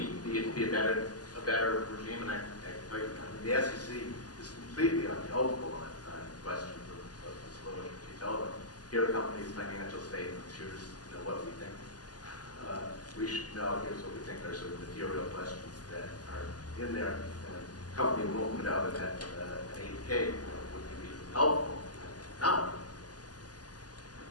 a better regime? And I tell you, the SEC is completely unhelpful on questions of disclosure. You tell them, here are companies' financial statements, here's what we think we should know, here's what we think are sort of material questions that are in there, and the company won't put out an 8K. Would you be helpful? No.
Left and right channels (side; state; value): right; late; 0.68 ms